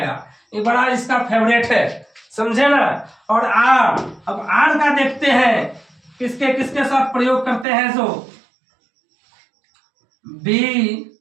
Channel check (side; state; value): left; drops out; at 7.7 s